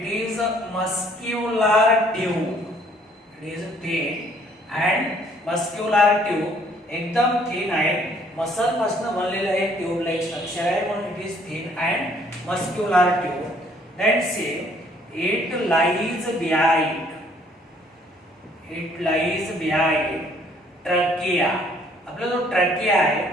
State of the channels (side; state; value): both; normal; correlation 0.62